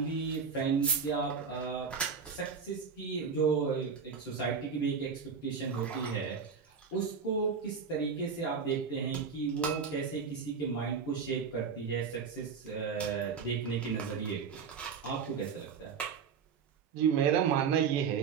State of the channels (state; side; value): quieter; left; 6.1 dB